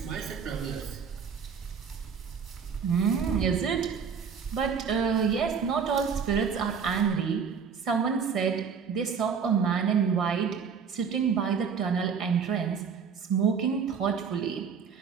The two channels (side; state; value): left; quieter; 6.4 dB